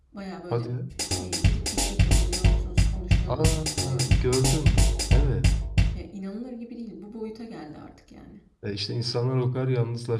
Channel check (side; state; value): both; identical; correlation 1.00